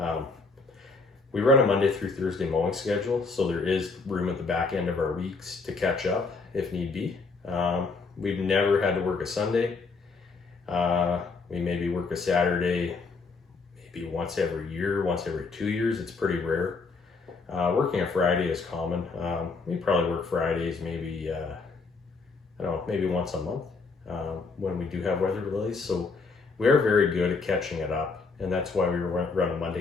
We run a Monday through Thursday mowing schedule, so there is room at the back end of our weeks to catch up if need be. We've never had to work a Sunday. We maybe work a Saturday, maybe once every year, once every 2 years. It's pretty rare. Working a Friday is common. We probably work Fridays maybe, maybe once a month when we do have weather delays. So we are very good at catching it up. And that's why we run a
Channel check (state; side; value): quieter; right; 4.2 dB